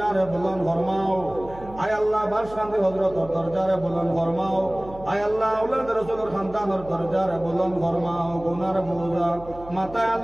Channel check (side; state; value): right; noise; hum, 17 dB below the sound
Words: বুলন্দ ফরমাও। আয় আল্লাহ বাসকান্দি হযরতের দরজারে বুলন্দ ফরমাও। আয় আল্লাহ আওলাদ রাসূলের খানদানের দরজারে বুলন্দ ফরমাও। গুনার বোঝা মাথায়